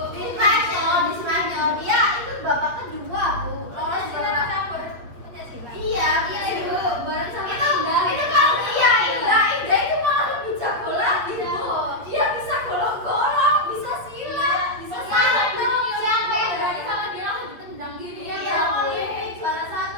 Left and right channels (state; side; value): late; left; 8.5 ms